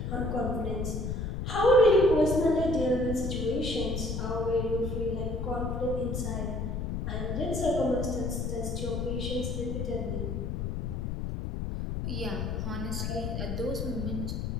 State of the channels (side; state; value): left; noise; rumble, 2 dB below the sound